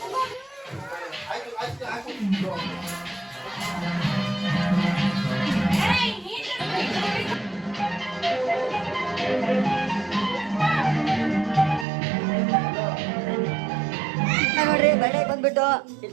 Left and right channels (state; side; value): drops out; left; at 11.9 s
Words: ನೋಡ್ರಿ ಬಳೆ ಬಂದ್ಬಿಟ್ಟು